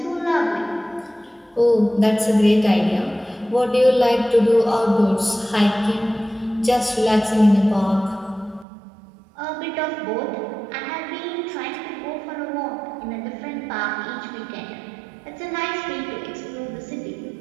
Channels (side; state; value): left; drops out; at 8.7 s